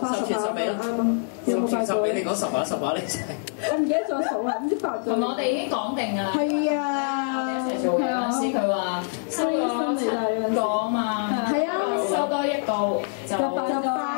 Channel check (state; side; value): silent; right; digital silence